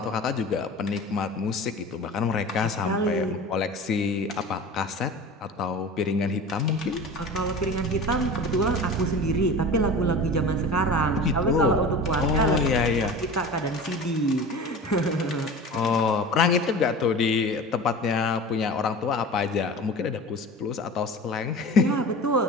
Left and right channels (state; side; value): normal; both; correlation 0.35